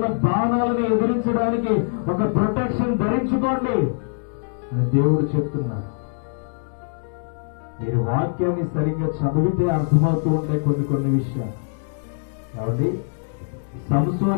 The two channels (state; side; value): silent; right; digital silence